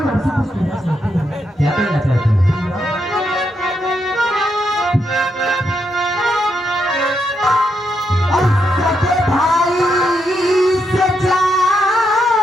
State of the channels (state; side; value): normal; both; correlation 0.80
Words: आपसे कुछ कहना चाहती हूँ। क्या कहना चाहती हो?